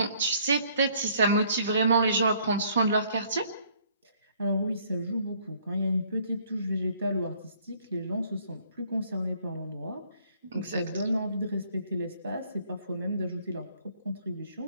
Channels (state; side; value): inverted; both; correlation -0.62